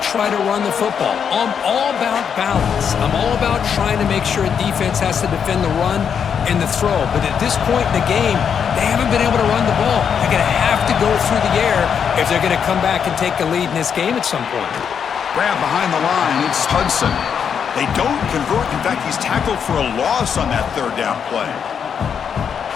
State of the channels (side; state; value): right; quieter; 7.4 dB